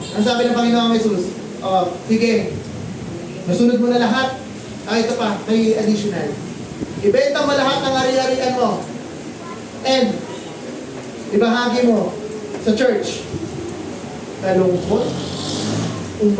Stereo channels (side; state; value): both; identical; correlation 1.00